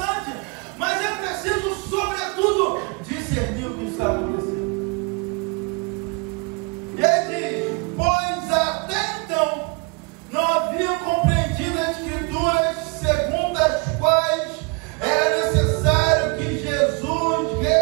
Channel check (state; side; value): quieter; left; 31.3 dB